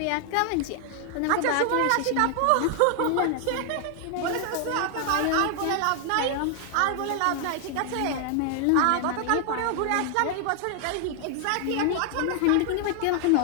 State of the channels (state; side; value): different; both; correlation 0.00